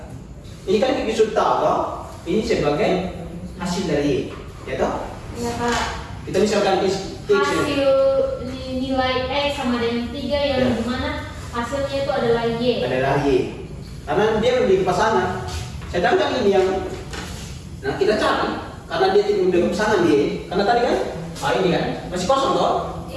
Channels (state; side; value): identical; both; correlation 1.00